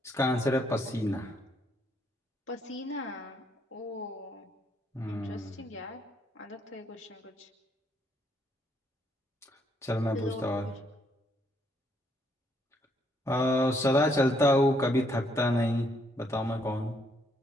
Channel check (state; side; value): normal; both; correlation 0.71